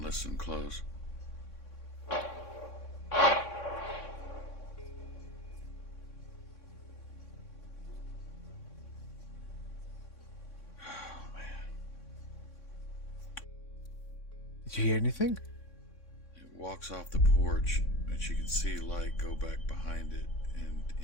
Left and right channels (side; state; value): right; late; 3.6 ms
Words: listen close. Did you hear anything? It walks off the porch, and she can see light go back behind it and